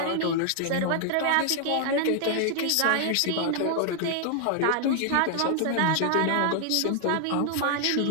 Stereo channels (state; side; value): different; both; correlation 0.00